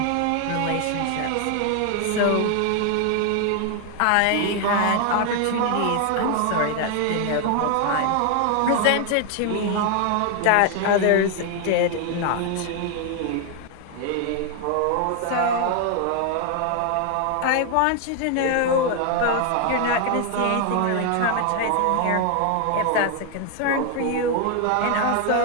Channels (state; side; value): different; both; correlation 0.00